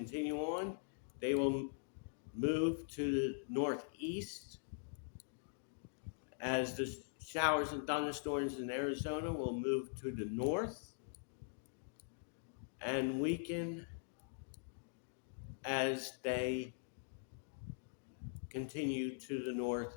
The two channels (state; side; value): silent; right; digital silence